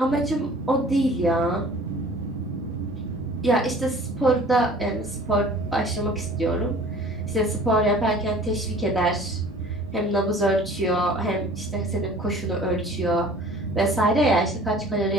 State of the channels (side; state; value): both; normal; correlation 0.47